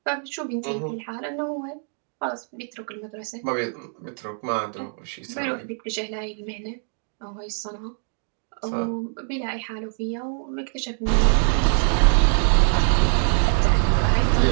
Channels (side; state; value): left; silent; 63 dB below the other